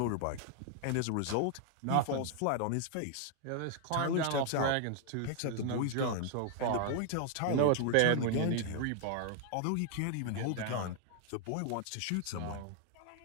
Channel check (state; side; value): different; both; correlation 0.00